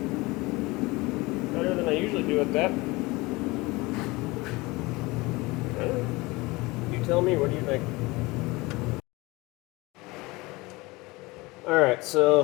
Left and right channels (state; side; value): quieter; right; 22.8 dB